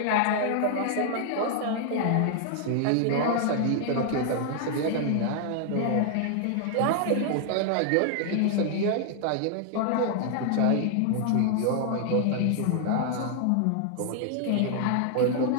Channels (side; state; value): both; different; correlation 0.00